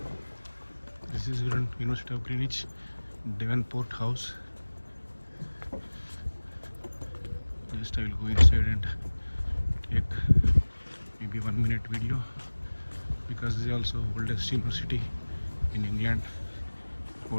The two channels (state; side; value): inverted; both; correlation -1.00